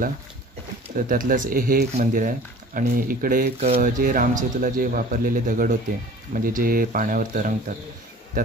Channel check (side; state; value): both; normal; correlation 0.45